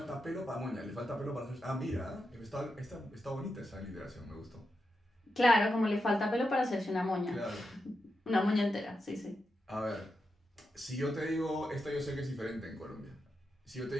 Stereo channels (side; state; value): both; normal; correlation 0.87